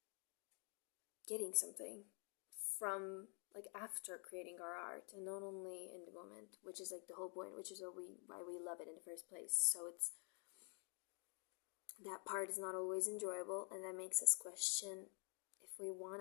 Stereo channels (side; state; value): right; quieter; 36.6 dB